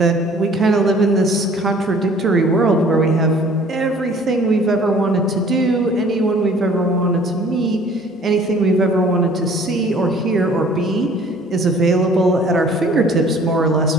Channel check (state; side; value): normal; both; correlation 0.53